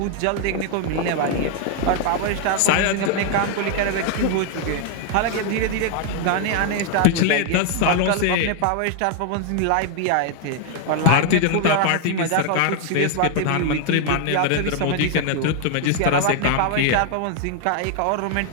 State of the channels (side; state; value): both; different; correlation 0.00